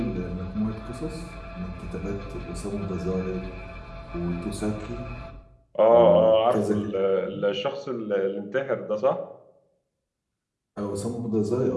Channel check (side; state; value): both; identical; correlation 1.00